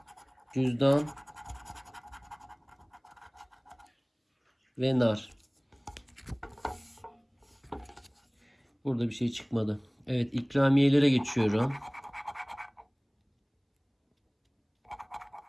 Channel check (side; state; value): both; identical; correlation 1.00